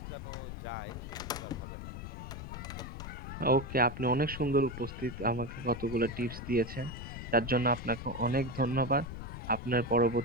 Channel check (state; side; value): noise; left; rumble, 9 dB below the sound